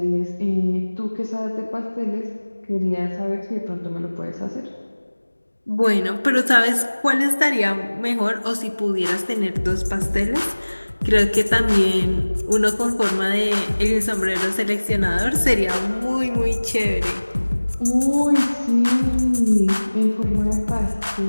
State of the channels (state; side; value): inverted; both; correlation -1.00